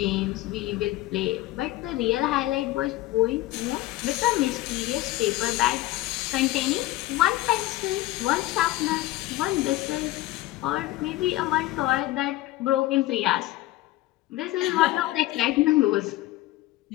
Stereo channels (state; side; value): quieter; right; 17.1 dB